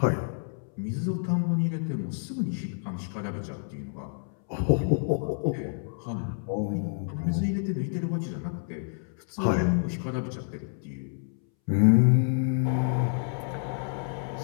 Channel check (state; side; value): silent; right; 59 dB below the other